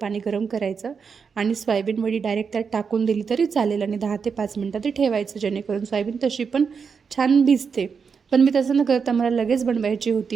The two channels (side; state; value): left; quieter; 5.9 dB